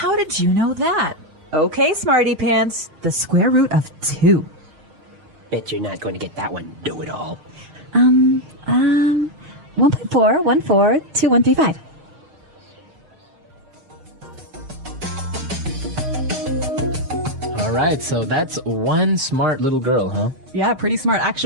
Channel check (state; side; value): late; left; 6.5 ms